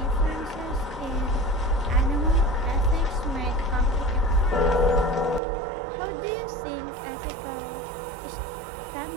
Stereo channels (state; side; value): drops out; left; at 5.4 s